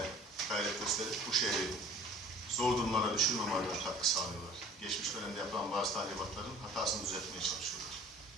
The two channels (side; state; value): both; normal; correlation 0.48